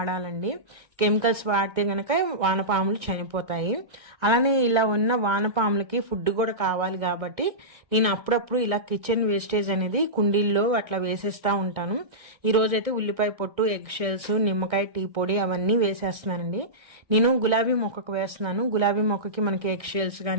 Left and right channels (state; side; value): late; left; 1.6 ms